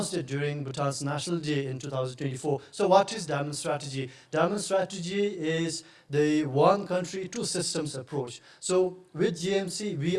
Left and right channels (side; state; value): both; identical; correlation 1.00